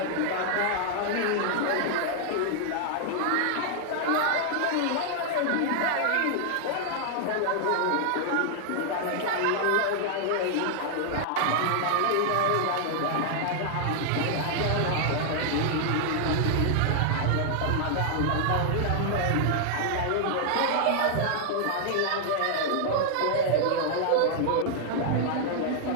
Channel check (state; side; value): different; both; correlation 0.00